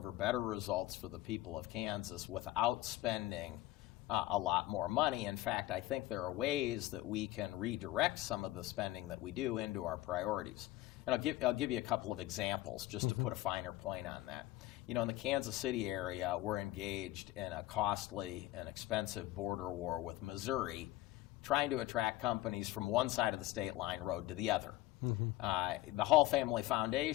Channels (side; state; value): right; quieter; 16.6 dB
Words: better results for the people of Kansas without spending a lot more money. In fact, I think there are ways that we can redirect some of the spending that we do into our priorities. And I'll give you a couple of examples just to put a finer point on that. In the Kansas City area, we're engaged in a costly and expensive border war with Missouri, trying to attract companies from one side of the state line road to the other. The Hall Family